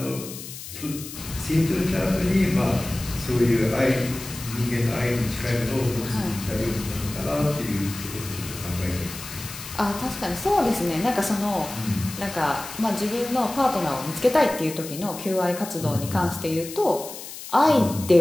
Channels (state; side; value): noise; left; hiss, 12 dB below the sound